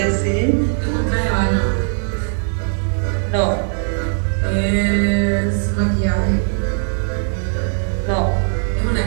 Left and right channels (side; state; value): left; silent; 67 dB below the other